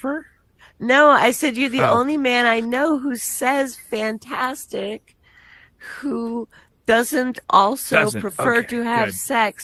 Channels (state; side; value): identical; both; correlation 1.00